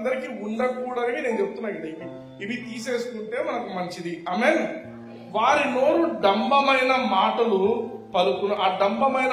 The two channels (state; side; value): identical; both; correlation 1.00